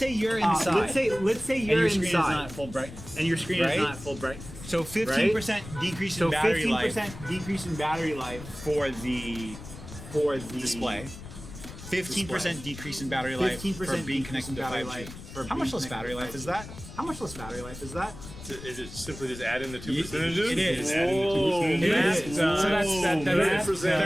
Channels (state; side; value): noise; left; rumble, 14 dB below the sound